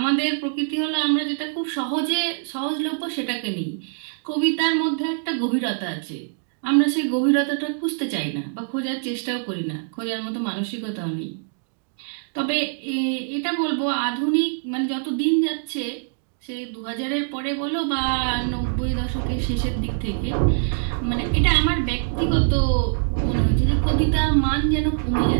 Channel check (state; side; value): silent; left; digital silence